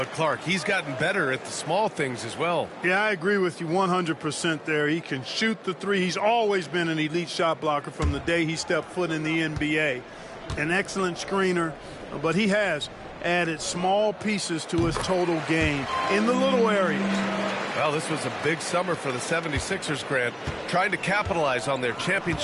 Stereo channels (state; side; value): identical; both; correlation 1.00